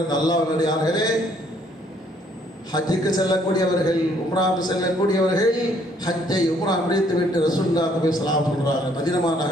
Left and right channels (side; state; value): both; normal; correlation 0.65